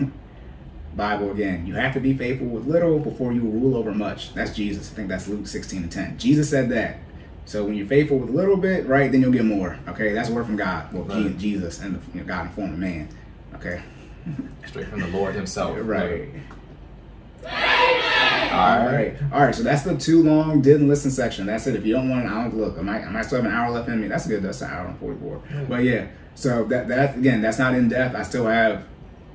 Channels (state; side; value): identical; both; correlation 1.00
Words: Bible again. You have to be faithful with little before you will rule over much. That's Jesus. I think that's Luke 16:10. Jesus said that. So when you're faithful with a little bit, right, then you'll get more. Okay, that's a word from God. Well, right. Jesus and God in form of man. Okay. Straight from the Lord himself. Right. All right. All right. So that's the too long didn't listen section. That's it. If you don't want an hour, look, I might still have an hour left in me. That's good. That's an hour and 44. Yeah. But yeah. So that again, that's not in depth. I still have